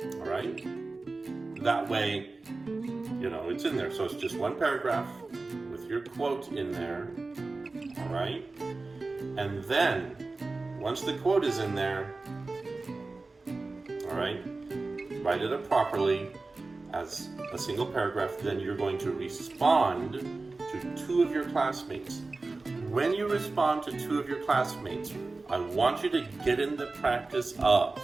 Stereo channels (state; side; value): quieter; left; 3.5 dB